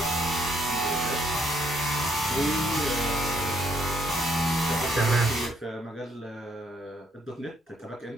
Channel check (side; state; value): both; normal; correlation 0.70